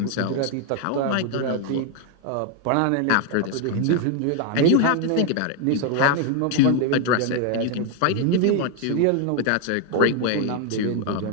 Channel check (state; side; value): different; both; correlation 0.01